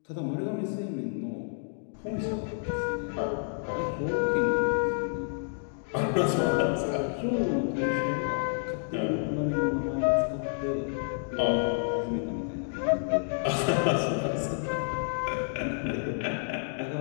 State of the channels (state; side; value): silent; right; digital silence